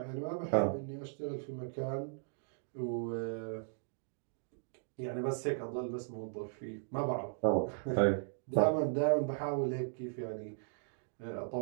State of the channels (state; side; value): silent; left; digital silence